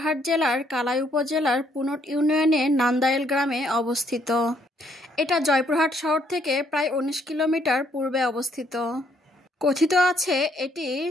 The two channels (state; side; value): normal; both; correlation 0.69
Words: জেলার কালাই উপজেলার পুনট ইউনিয়নের নান্দাইল গ্রামে অবস্থিত। এটা জয়পুরহাট শহর থেকে প্রায় ১৯ কিলোমিটার পূর্বে অবস্থিত। কথিত আছে এটি